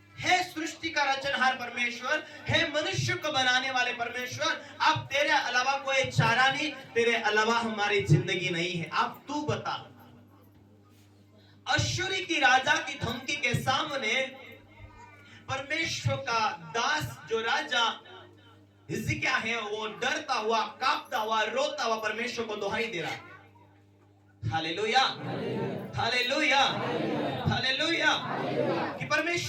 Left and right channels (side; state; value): both; identical; correlation 1.00